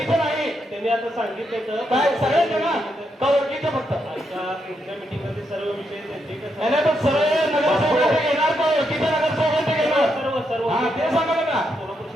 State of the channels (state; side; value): normal; both; correlation 0.81